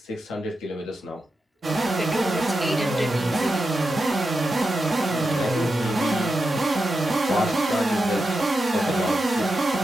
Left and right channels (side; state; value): both; normal; correlation 0.89